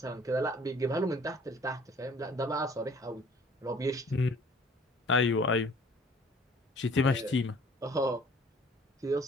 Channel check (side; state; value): both; normal; correlation 0.53